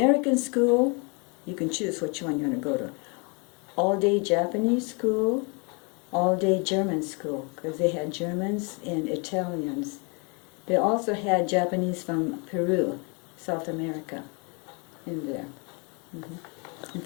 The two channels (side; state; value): right; quieter; 32.9 dB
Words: school. You can choose which one you want to go to. All-day Japanese school, all-day German school, because they had Germans and Italians. They also had Japanese from Peru, South America, in there. In